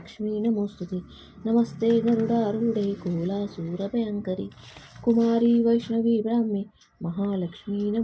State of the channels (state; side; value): identical; both; correlation 1.00